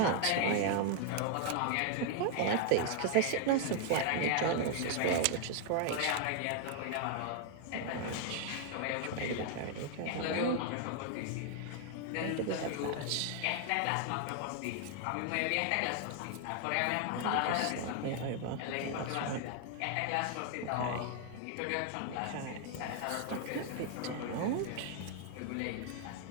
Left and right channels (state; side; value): different; both; correlation 0.00